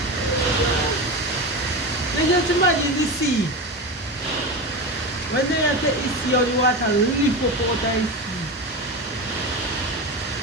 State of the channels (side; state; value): both; normal; correlation 0.22